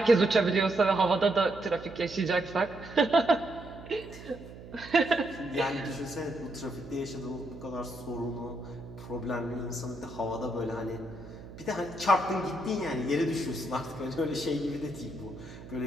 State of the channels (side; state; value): right; noise; hum, 15 dB below the sound